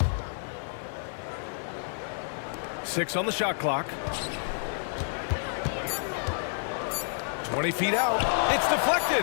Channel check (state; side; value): silent; right; 58 dB below the other